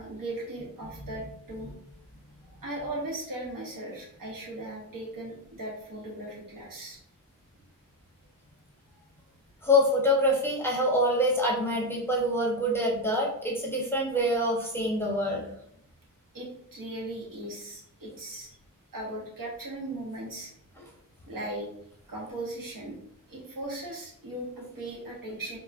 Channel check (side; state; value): both; normal; correlation 0.10